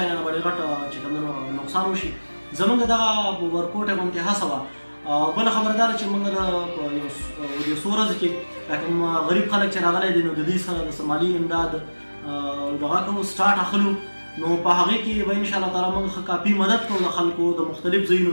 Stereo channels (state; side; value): inverted; both; correlation -1.00